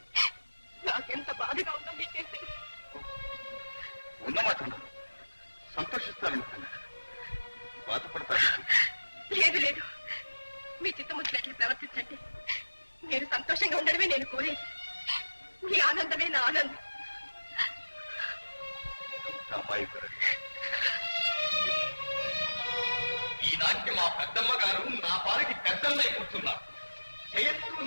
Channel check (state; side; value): inverted; both; correlation -1.00